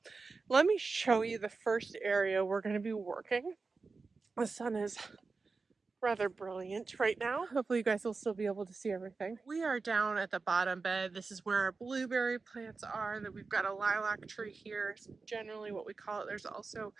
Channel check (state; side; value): quieter; left; 4.3 dB